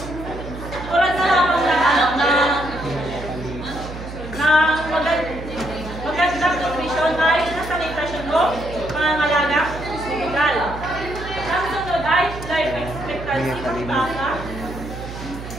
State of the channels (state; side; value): noise; right; hum, 10 dB below the sound